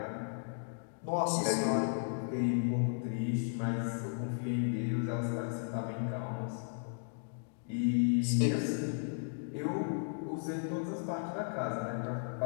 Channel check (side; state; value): right; silent; digital silence